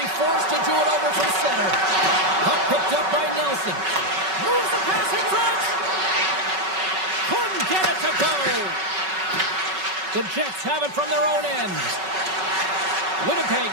forced to do it over from center. Puck picked up by Nelson. Moves the pass in front. Couldn't get it to go. The Jets have it from their own end.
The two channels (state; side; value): late; left; 5.3 ms